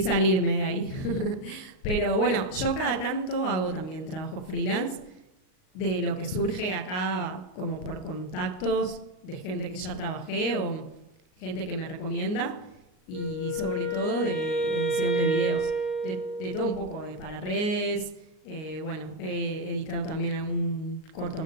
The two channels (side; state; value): right; late; 38 ms